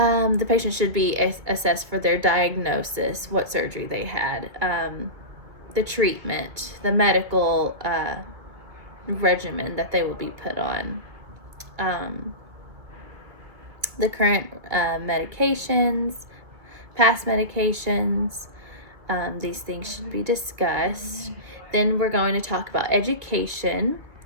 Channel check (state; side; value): late; left; 2.1 ms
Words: patient should be assessed for their diagnosis, what surgery they had, the treatment, the medical regimen that they will be put on, the current medications, past medications. These things should be discussed. Then we're going to talk about education.